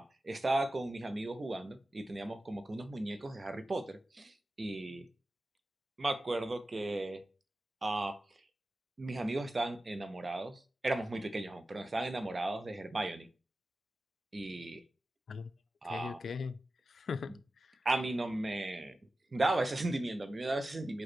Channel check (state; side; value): normal; both; correlation 0.94